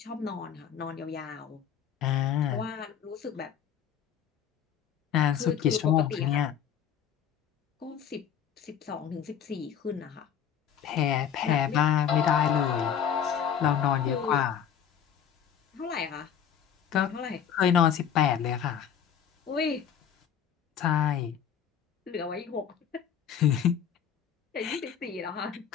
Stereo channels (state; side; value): quieter; right; 8.6 dB